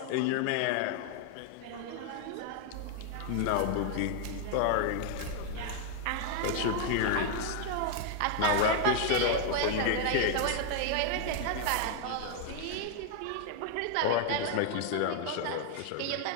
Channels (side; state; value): both; different; correlation 0.00